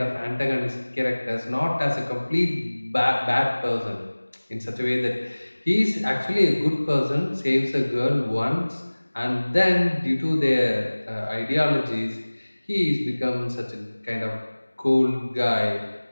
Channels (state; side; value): inverted; both; correlation -1.00